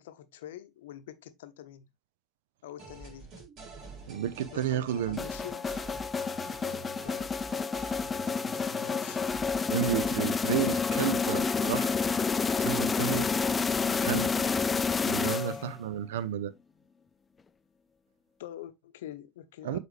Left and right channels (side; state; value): both; normal; correlation 0.54